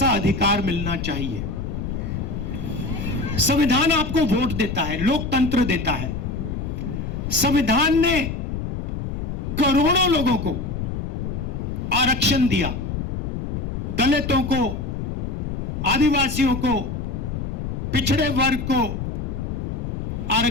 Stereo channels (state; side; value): noise; left; rumble, 4 dB below the sound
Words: अधिकार मिलना चाहिए। संविधान आपको वोट देता है, लोकतंत्र देता है। संविधान ने करोड़ों लोगों को आरक्षण दिया, दलितों को, आदिवासियों को, पिछड़े वर्ग को